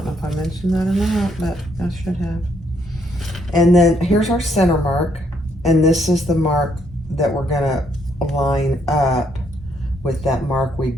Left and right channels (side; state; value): both; normal; correlation 0.72